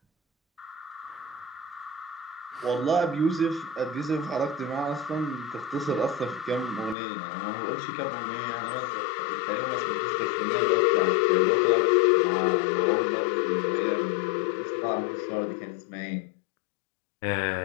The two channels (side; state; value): right; drops out; at 7.0 s